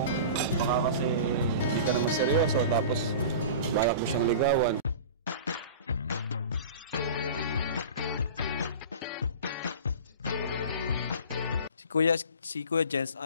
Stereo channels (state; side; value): inverted; both; correlation -0.36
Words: Baka kasi hindi ka naman seryoso tapos balak mo siyang ligawan. Si Kuya Jens,